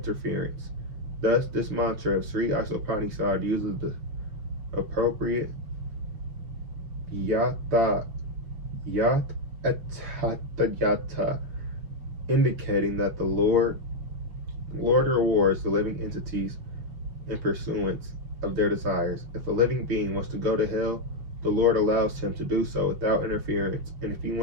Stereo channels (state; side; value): late; left; 6.7 ms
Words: Thus, this mantra of Sri Isopanisad uses the appropriate yata atata, indicating that the Lord rewards the living entities in pursuance of their desires. If a living being wants to go to hell, the Lord allows him to do so without interference. And if he